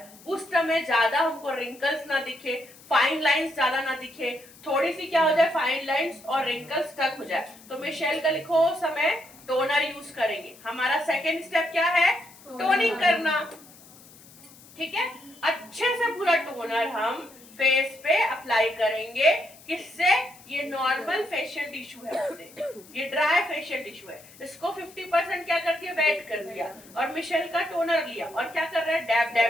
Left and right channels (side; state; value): left; noise; hiss, 22 dB below the sound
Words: उस समय ज्यादा हमको रिंकल्स ना दिखे, फाइन लाइंस ज्यादा ना दिखे, थोड़ी सी क्या हो जाए, फाइन लाइंस और रिंकल्स तक हो जाए, तो मिशेल का लिखो समय टोनर यूज करेंगे। हमारा सेकेंड स्टेप क्या है, टोनिंग करना। ठीक है, अच्छे से पूरा टोनर हम फेस पे अप्लाई करेंगे, किससे, ये नॉर्मल फेशियल टिश्यू है अपने, ये ड्राई फेशियल टिश्यू है। इसको 50% क्या करती है, वेट कर दिया और मिशेल का टोनर लिया और क्या कर रहा है, dab